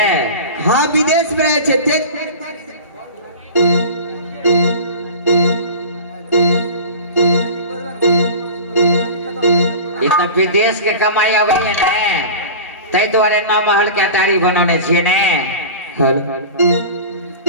हाँ विदेश में रहे छे। ते तो विदेश के कमाई अबै है ने, तै द्वारे 9 महल के अटारी बनौने छिए ने।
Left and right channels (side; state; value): both; inverted; correlation -0.34